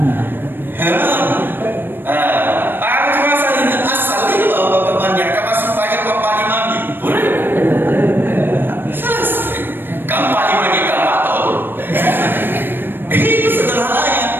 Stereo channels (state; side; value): late; left; 0.097 ms